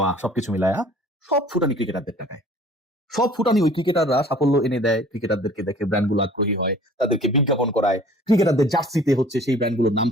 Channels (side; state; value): both; normal; correlation 0.50